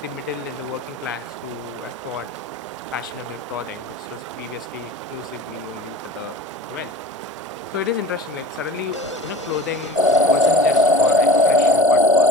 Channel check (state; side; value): normal; both; correlation 0.37